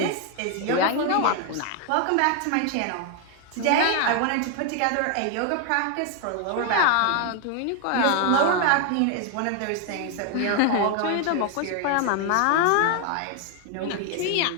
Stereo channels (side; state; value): both; different; correlation 0.00